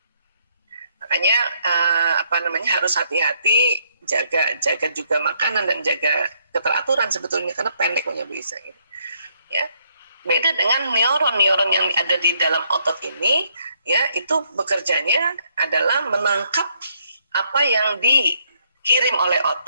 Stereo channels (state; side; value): inverted; both; correlation -0.71